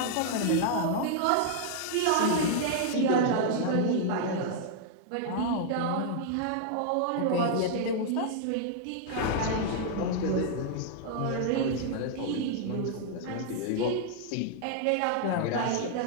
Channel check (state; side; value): different; both; correlation -0.01